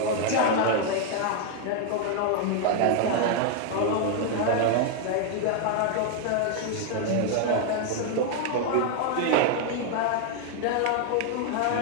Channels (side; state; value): both; different; correlation 0.00